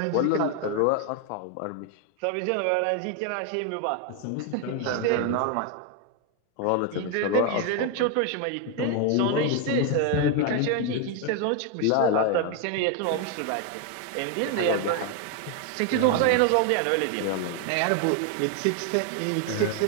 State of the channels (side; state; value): both; different; correlation 0.01